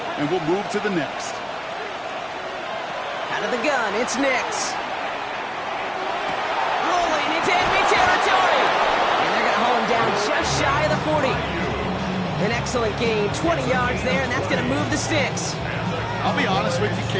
and we'll move to the next. Out of the gun, it's Nix. Rolling into enemy territory. And they're going to haul him down just shy of the 40. An excellent gain, 20 yards there, and that's going to move the sticks. I'll be honest with you,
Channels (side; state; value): both; identical; correlation 1.00